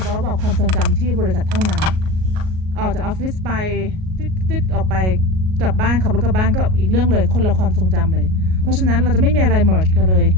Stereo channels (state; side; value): late; left; 38 ms